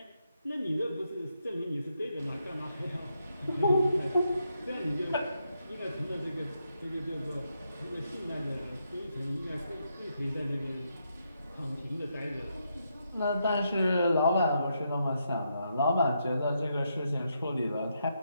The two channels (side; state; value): both; inverted; correlation -0.81